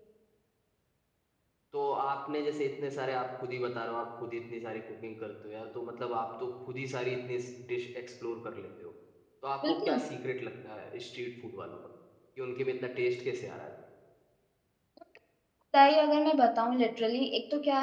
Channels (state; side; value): identical; both; correlation 1.00